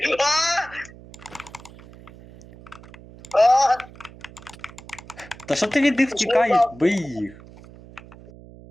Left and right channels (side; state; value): right; noise; hum, 20 dB below the sound